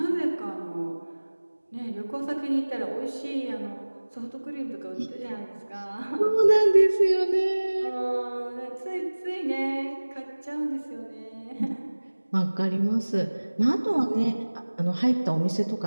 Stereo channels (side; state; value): both; inverted; correlation -1.00